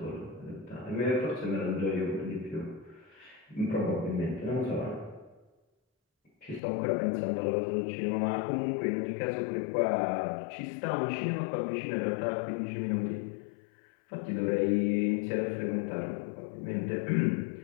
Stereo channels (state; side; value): drops out; right; at 6.6 s